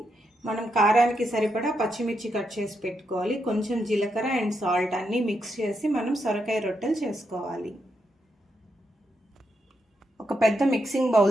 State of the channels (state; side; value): normal; both; correlation 0.82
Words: మనం కారానికి సరిపడా పచ్చిమిర్చి కట్ చేసి పెట్టుకోవాలి. కొంచెం జీలకర్ర అండ్ సాల్ట్ అన్నీ మిక్స్ చేసి మనం సొరకాయ రొట్టెలు చేసుకోవాలి. ఒక పెద్ద మిక్సింగ్